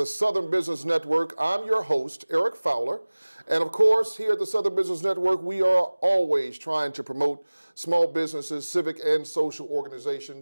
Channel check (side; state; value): both; inverted; correlation -1.00